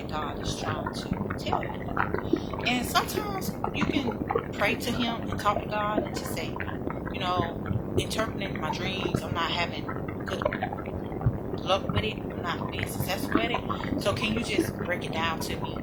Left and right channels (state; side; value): identical; both; correlation 1.00